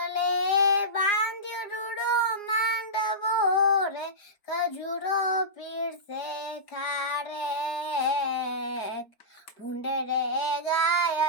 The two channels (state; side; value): late; right; 4.9 ms